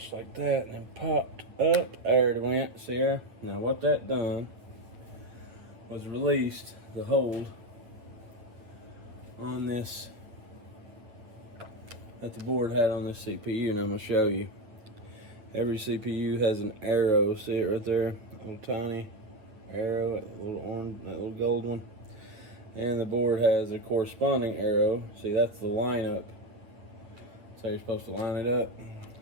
like that and then popped up. There it went, see there? Now what that done was released the hold on this that the board had on this CPU, and I'm gonna show you. Every CPU has an arrow, see it right there? A little tiny arrow, that little orange, that little gold one, and the board has a corresponding arrow. See, that's the lineup. That's how you're supposed to line it up.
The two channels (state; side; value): late; left; 8.9 ms